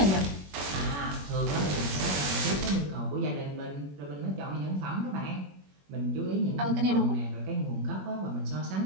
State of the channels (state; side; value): late; left; 21 ms